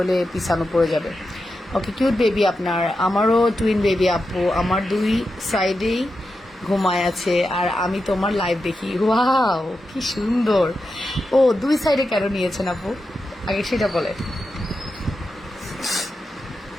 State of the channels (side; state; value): both; normal; correlation 0.89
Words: পিছানো পড়ে যাবে। ওকে, কিউট বেবি আপনার। আমারও টুইন বেবি আপু, আমার 2 সাইডেই ঘুমায় আছে, আর আমি তোমার লাইভ দেখি। ওয়াও, কি সুন্দর। ও, 2 সাইডে কেন নিয়েছেন আপু, আগে সেটা বলে।